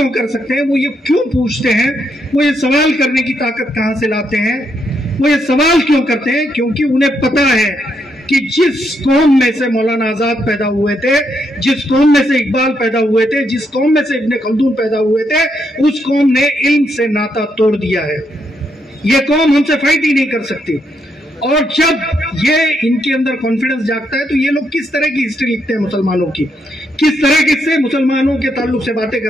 कर सकते हैं? वो ये क्यों पूछते हैं? वो ये सवाल करने की ताकत कहां से लाते हैं? वो ये सवाल क्यों करते हैं? क्योंकि उन्हें पता है कि जिस कौम में से मौलाना आजाद पैदा हुए थे, जिस कौम में से इकबाल पैदा हुए थे, जिस कौम में से इब्ने खल्दून पैदा हुए थे, उस कौम ने इल्म से नाता तोड़ दिया है. ये कौम हमसे फाइट ही नहीं कर सकती. और जब ये इनके अंदर कॉन्फिडेंस जागता है तो ये लोग किस तरह की हिस्ट्री लिखते हैं मुसलमानों की, किस तरह से मुसलमानों के ताल्लुक से बातें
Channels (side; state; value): both; normal; correlation 0.78